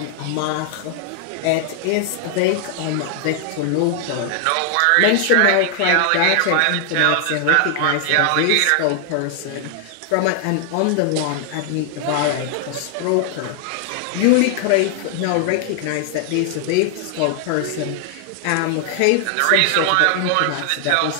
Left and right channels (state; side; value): different; both; correlation 0.00